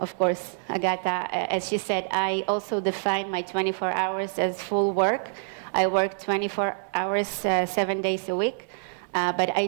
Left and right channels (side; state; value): left; silent; 61 dB below the other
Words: course. Agatha, as she said, I also define my 24 hours as full work. I work 24 hours, 7 days a week. But I